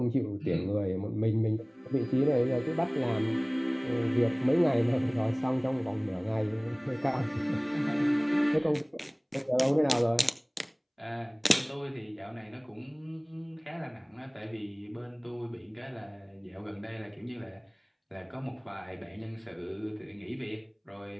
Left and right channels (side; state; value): both; identical; correlation 1.00